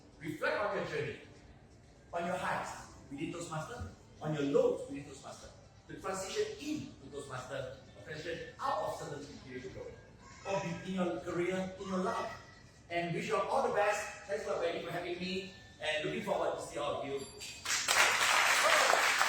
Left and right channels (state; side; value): identical; both; correlation 1.00